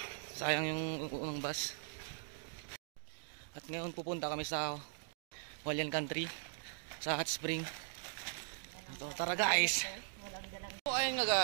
sayang yung unang bus. At ngayon pupunta kami sa Hualien Country, sa Hot Spring. Ito, tara guys. So ayun nga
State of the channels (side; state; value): left; silent; digital silence